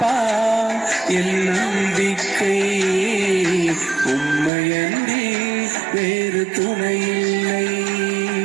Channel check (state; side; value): drops out; left; at 4.5 s